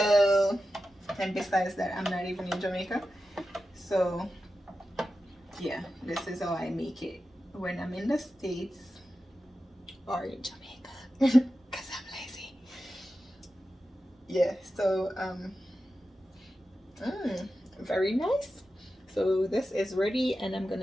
and besides that, I'm not even in Jamaica, so yeah, this is how I make it when I'm in the States or in Jamaica, because I'm lazy. Yeah, so very nice. So this is ready, and I'm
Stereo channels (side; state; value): both; normal; correlation 0.92